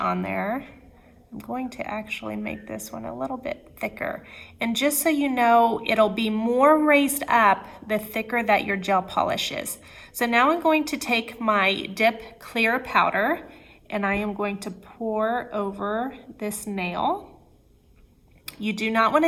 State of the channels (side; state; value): both; identical; correlation 1.00